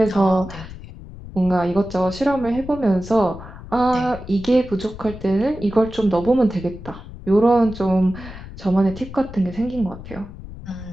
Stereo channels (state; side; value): noise; left; rumble, 14 dB below the sound